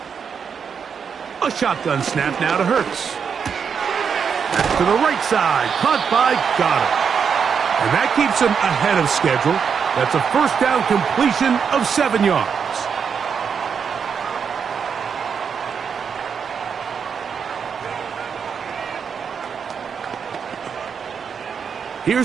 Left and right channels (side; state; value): left; quieter; 6.6 dB